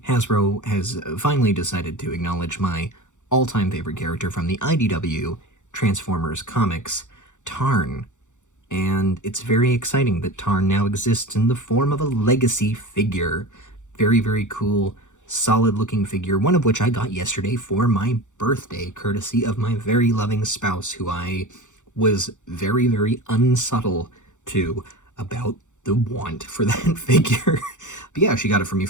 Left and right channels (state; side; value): late; right; 0.85 ms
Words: Hasbro has finally decided to acknowledge my all-time favorite character from the IDW Transformers comics, Tarn. And it's very exciting that Tarn now exists in the form of a legacy figure. Very, very cool, solid-looking figure, one of which I got yesterday for my birthday, courtesy of my very loving spouse, who I was very, very unsubtle to about the want for that figure. But yeah, she got it for me